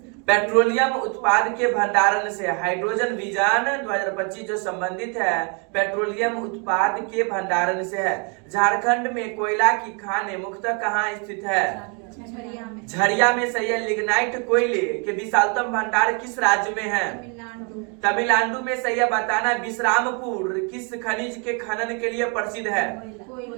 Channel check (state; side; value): quieter; left; 36.0 dB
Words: पेट्रोलियम उत्पाद के भंडारण से। हाइड्रोजन विजन 2025 जो संबंधित है पेट्रोलियम उत्पाद के भंडारण से है। झारखंड में कोयला की खानें मुख्यतः कहाँ स्थित है? झरिया में। झरिया में। सही है। लिग्नाइट कोयले के विशालतम भंडार किस राज्य में है? तमिलनाडु। तमिलनाडु में। सही है। बताना विश्रामपुर किस खनिज के खनन के लिए प्रसिद्ध है?